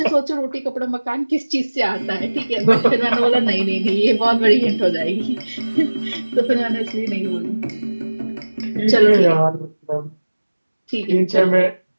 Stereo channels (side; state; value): both; inverted; correlation -1.00